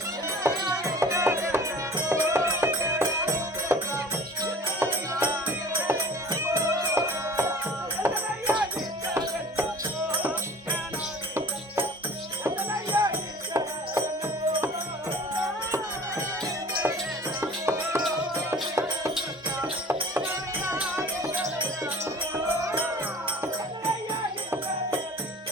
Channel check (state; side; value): normal; both; correlation 0.44